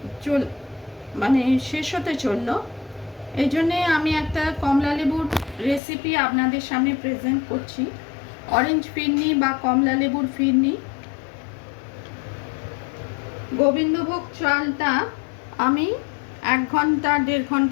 শেষ হতে চললো। এই জন্যে আমি একটা কমলা লেবুর রেসিপি আপনাদের সামনে প্রেজেন্ট করছি। অরেঞ্জ ফিরনি বা কমলা লেবুর ফিরনি। গোবিন্দভোগ চালটা আমি 1 ঘন্টা 1.5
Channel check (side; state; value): right; drops out; at 5.8 s